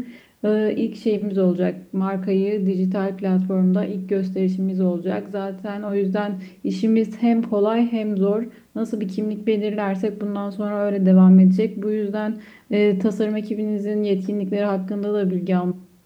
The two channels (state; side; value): identical; both; correlation 1.00